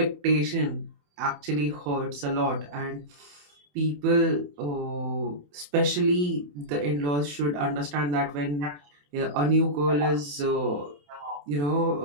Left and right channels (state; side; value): late; left; 28 ms